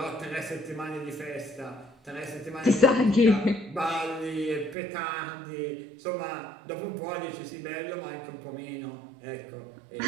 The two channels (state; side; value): drops out; left; at 4.8 s